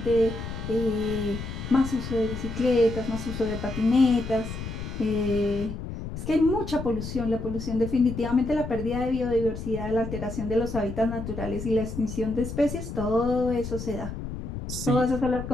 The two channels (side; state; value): left; noise; rumble, 7 dB below the sound